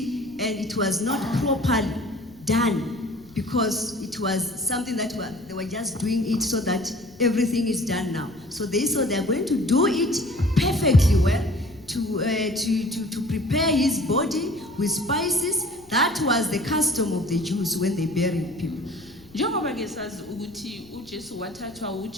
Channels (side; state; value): left; noise; rumble, 26 dB below the sound